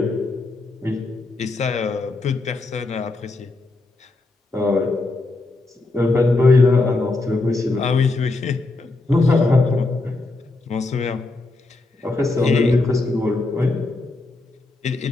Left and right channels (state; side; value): quieter; right; 3.2 dB